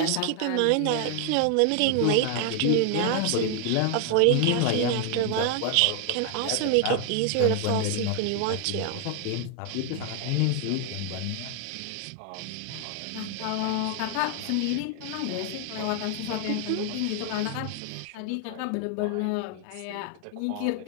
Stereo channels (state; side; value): different; both; correlation 0.00